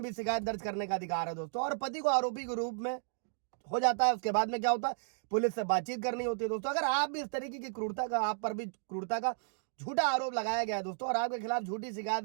भी शिकायत दर्ज करने का अधिकार है दोस्तों। और पति को आरोपी के रूप में हो जाता है। उसके बाद में क्या होता है, पुलिस से बातचीत करनी होती है दोस्तों। अगर आप भी इस तरीके की क्रूरता का, आप पर भी क्रूरता का झूठा आरोप लगाया गया है दोस्तों, और आपके खिलाफ झूठी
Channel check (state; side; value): silent; left; digital silence